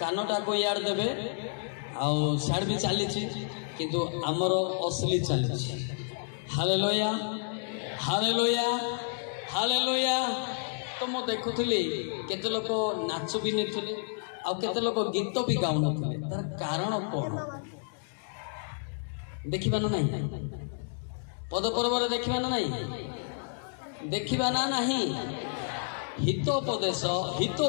को यार देबे आ साड भी चली किंतु आमर असली चली हालेलुया हालेलुया हालेलुया। तो मु देखुली केते लोक नाच भी नहीं आ केते लोक गीत भी गाउ नथिले तार कारण कौन देखिबा ना नहीं पद पर्व देखिबा ना नहीं देखिबा ना नहीं हितोपदेश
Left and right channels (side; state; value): right; silent; digital silence